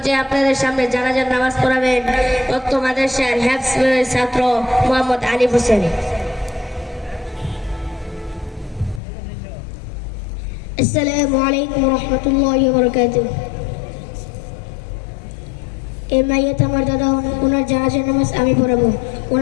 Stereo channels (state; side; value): drops out; right; at 9.0 s